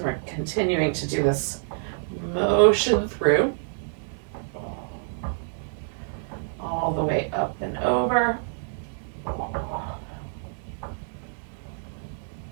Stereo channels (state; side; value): silent; left; 60 dB below the other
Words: we're continuing to do this motion through, all the way up and over,